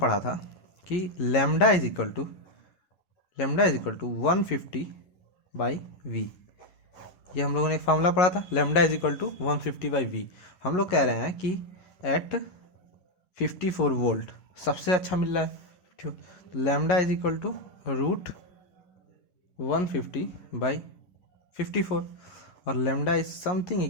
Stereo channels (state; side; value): late; right; 11 ms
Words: था कि lambda is equal to 150/v। ये हम लोगों ने एक फार्मूला पढ़ा था, lambda is equal to 150/v। हम लोग कह रहे हैं कि एट 54 वोल्ट सबसे अच्छा मिल रहा है। ठीक, lambda is equal to root 150/54, और lambda is something